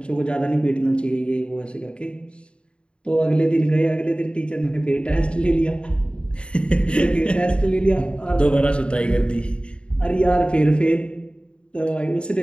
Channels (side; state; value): right; late; 0.055 ms